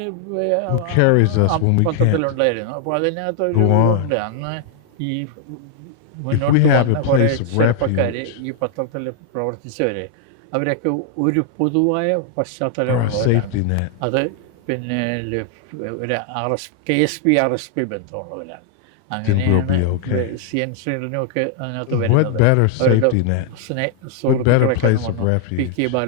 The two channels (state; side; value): different; both; correlation 0.00